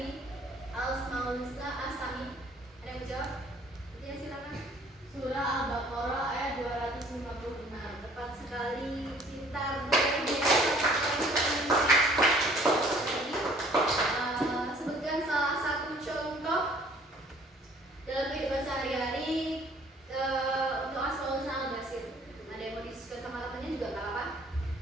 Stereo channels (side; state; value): both; normal; correlation 0.56